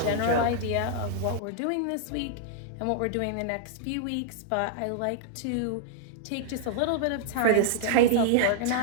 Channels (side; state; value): both; different; correlation -0.01